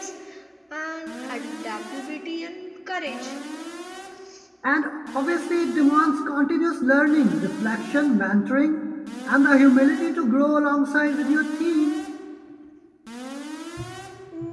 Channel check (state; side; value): identical; both; correlation 1.00